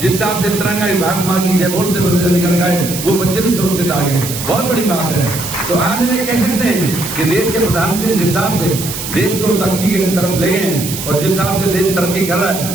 जिस हिसाब से तिरंगा भारत मां की जय बोलते बच्चे निकल गए, वो बच्चे भी सुरक्षित आ गए। बहुत बड़ी बात है। तो आज में कह सकते हैं कि देश के प्रधानमंत्री जिस हिसाब से देश को तरक्की की तरफ ले गए हैं, और जिस हिसाब से देश तरक्की कर रहा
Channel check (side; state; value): right; noise; hiss, 7 dB below the sound